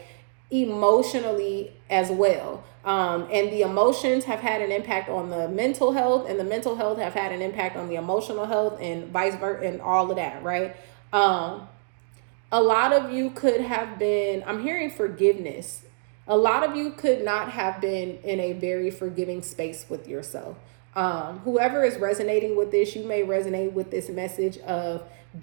emotionally as well. And the emotions have had an impact on the mental health, and the mental health have had an impact on the emotional health, and vice versa, and all of that, right? A lot of you could have been, I'm hearing forgiveness. A lot of you could not have been in a very forgiving space with yourself. Whoever is resonating with this, you may resonate with this message of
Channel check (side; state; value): left; silent; digital silence